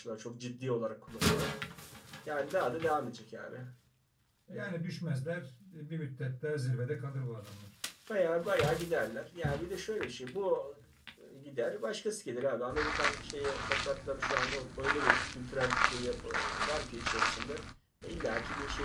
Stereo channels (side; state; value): both; identical; correlation 1.00